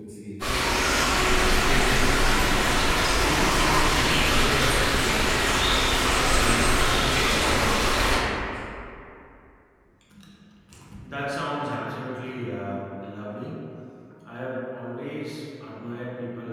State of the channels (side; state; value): both; identical; correlation 1.00